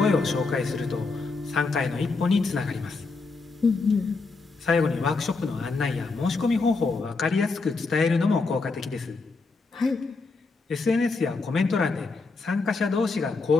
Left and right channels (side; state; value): right; quieter; 4.0 dB